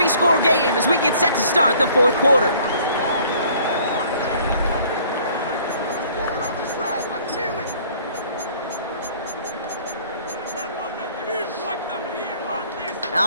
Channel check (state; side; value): inverted; both; correlation -0.56